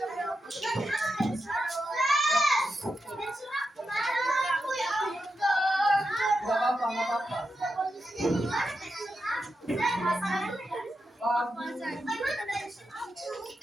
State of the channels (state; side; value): normal; both; correlation 0.88